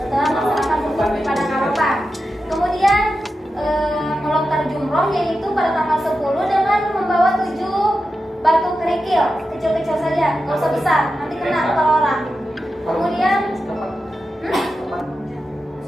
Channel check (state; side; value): normal; both; correlation 0.91